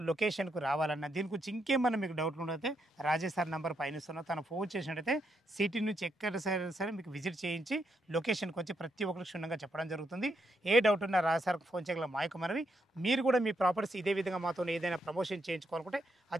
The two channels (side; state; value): both; normal; correlation 0.79